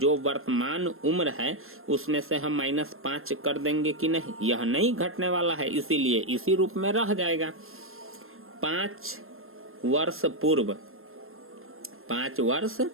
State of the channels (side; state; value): left; late; 0.61 ms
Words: वर्तमान उम्र है उसमें से हम -5 कर देंगे कि नहीं? यह नहीं घटने वाला है, इसीलिए इसी रूप में रह जाएगा। 5 वर्ष पूर्व, 5 वर्ष